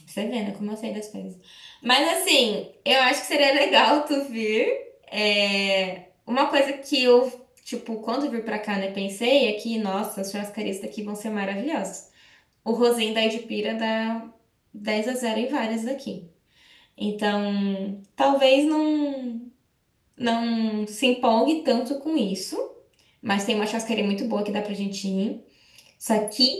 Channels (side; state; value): both; identical; correlation 1.00